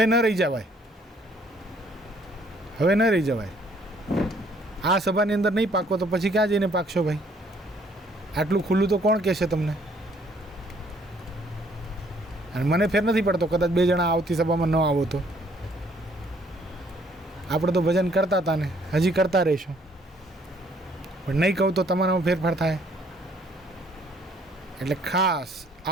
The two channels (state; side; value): normal; both; correlation 0.63